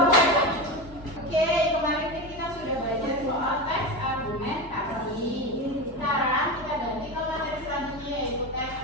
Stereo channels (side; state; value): right; late; 4.0 ms